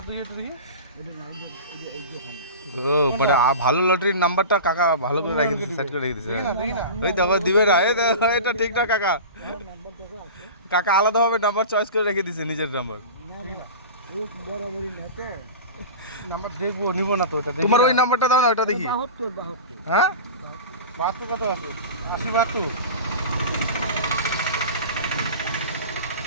তুই একটু দেখি ও মানে ভালো লটারির নাম্বারটা কাকা ভালো করে রেখে দিয়েছে, সেট করে রেখে দিয়েছে। ওই দেখো দিবে না, এটা ঠিক না কাকা। কাকা আলাদাভাবে নাম্বার চয়েস করে রেখে দিয়েছে, নিজের নাম্বার। বরাবরই না তো নাম্বার দেখবো, নিব না তো। এটা তোমার ওই নাম্বারটা দাও না, ওটা দেখি। 72 হ্যাঁ 72 কত আছে? 80 72।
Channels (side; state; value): both; inverted; correlation -0.32